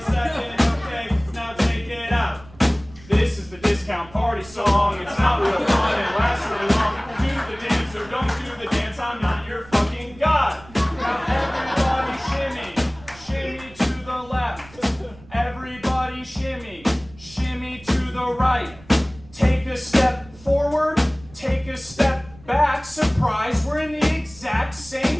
second, okay? Now take it out. This is the discount party song. It's not real fun and lasts really long. Do the dance or don't do the dance. I'm not your fucking god. Now everybody shimmy, shimmy to the left. Everybody shimmy, shimmy to the right. Take a step forward, take a step back. Surprise, we're in the exact same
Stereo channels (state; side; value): noise; right; rumble, 22 dB below the sound